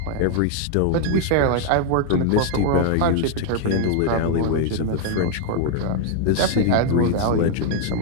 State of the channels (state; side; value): different; both; correlation 0.00